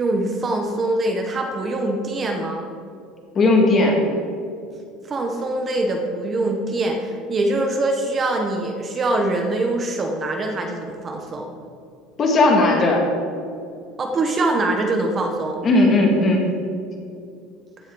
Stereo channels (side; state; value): both; normal; correlation 0.57